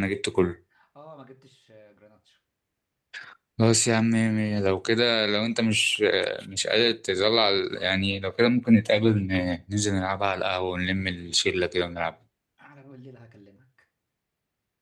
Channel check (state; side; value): identical; both; correlation 1.00